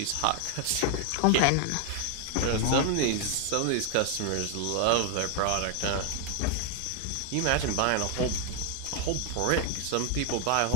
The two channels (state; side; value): different; both; correlation 0.00